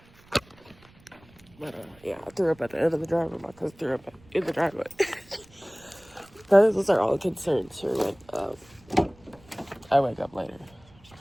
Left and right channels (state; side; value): noise; right; rumble, 27 dB below the sound